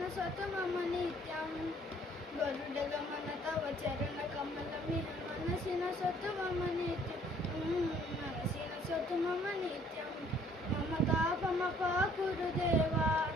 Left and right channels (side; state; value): both; normal; correlation 0.60